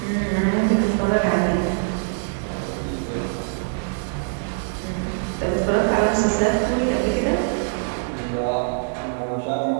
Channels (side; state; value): left; silent; 63 dB below the other